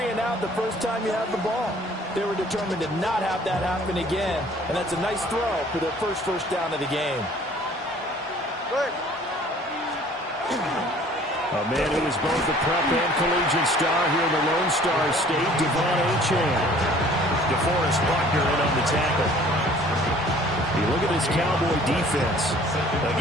the first time you have the ball. They were determined to not have that happen again, and that's a nice throw for their first down of the game. A man who is both a prep and collegiate star here in the Lone Star State, Devon Achane. DeForest Buckner in on the tackle. You look at this Cowboy defense.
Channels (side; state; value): both; normal; correlation 0.53